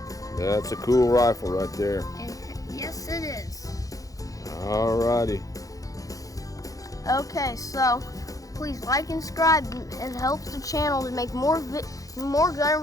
That's a cool rifle right there. Yes, it is. Alrighty. Okay, so please like and subscribe. It helps the channel to make more gun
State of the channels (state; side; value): late; right; 0.17 ms